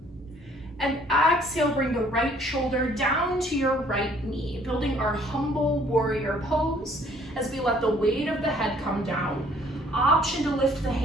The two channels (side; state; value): both; normal; correlation 0.60